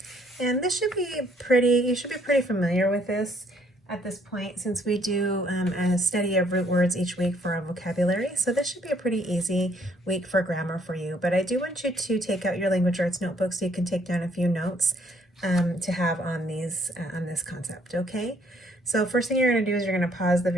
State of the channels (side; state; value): both; normal; correlation 0.65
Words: and this should be you should be pretty familiar with this at this point, since we do a study of root words each week for our vocabulary. So this should be a pretty easy week for grammar for you. But I do want you to take out your language arts notebook so you can take down a few notes to have on this concept. Okay. So first thing you're going to do is you're going to pause the